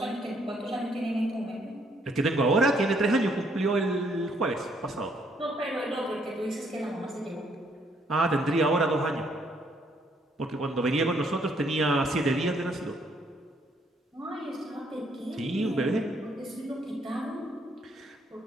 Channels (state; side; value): normal; both; correlation 0.69